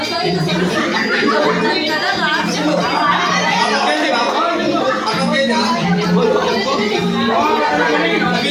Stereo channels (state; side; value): identical; both; correlation 1.00